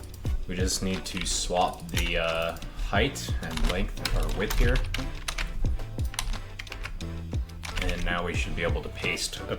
We just need to swap the height and length or width here. And now we should be able to paste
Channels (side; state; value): both; identical; correlation 1.00